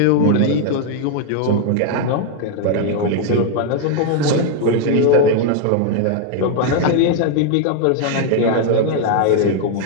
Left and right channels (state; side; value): different; both; correlation 0.00